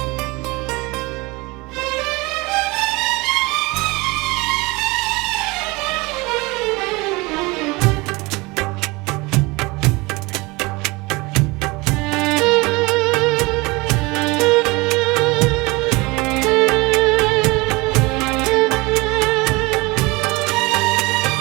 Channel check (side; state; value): left; quieter; 24.3 dB